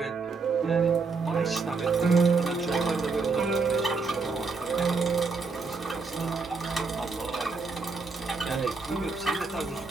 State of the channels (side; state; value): left; quieter; 4.4 dB